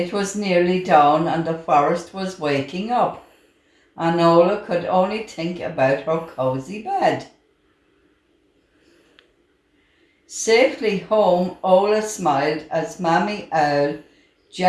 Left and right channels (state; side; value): identical; both; correlation 1.00